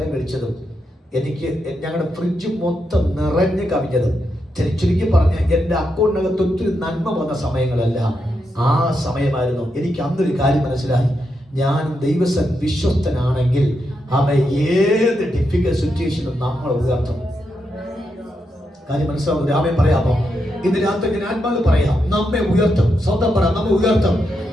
കഴിച്ചതും എനിക്ക് ഞങ്ങളുടെ ഫ്രിഡ്ജ് മൊത്തം നിറഞ്ഞു കവിഞ്ഞതും ചുരുക്കി പറഞ്ഞ എൻ്റെ അക്കൗണ്ടിനകത്ത് ഒത്തിരി നന്മ വന്ന സമയങ്ങളെല്ലാം ആ സമയമായിരുന്നു. എനിക്ക് അന്നൊരു കാര്യം മനസ്സിലായി, ഞാൻ ദൈവസൻ വിശ്വസ്തനാണെങ്കിൽ അവൻ ഏത് ഡിഫിക്കൽട്ട് സിറ്റുവേഷനും നമ്മൾ ഉയർത്തും. കാര്യം മനസ്സിലാവും. രാമൻ പറയാമോ? ഇന്ന് രാത്രി ഞാൻ ആത്മാവ് പറയാം, നമ്മെ ഉയർത്തും. സ്വന്തം പറയാം, നമ്മെ ഉയർത്തും.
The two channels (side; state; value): both; normal; correlation 0.84